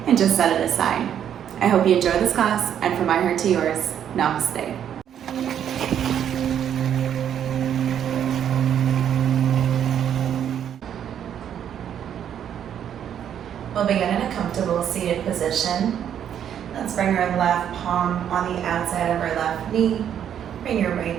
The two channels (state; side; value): quieter; left; 9.4 dB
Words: and just set it aside. I hope you enjoy this class, and from my heart to yours, namaste. We'll begin in a comfortable seated position. Let's bring our left palm on the outside of our left knee. Bring your